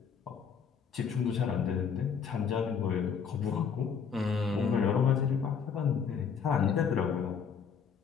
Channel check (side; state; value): right; quieter; 6.7 dB